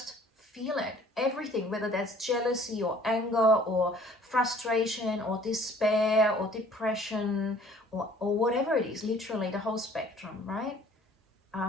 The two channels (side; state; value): both; normal; correlation 0.54